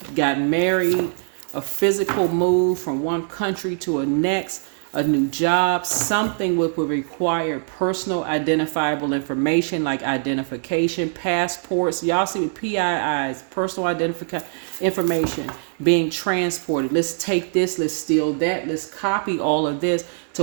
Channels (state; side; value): silent; left; 64 dB below the other